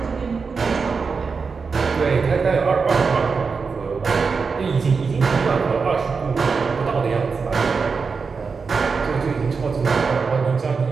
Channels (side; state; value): left; quieter; 5.0 dB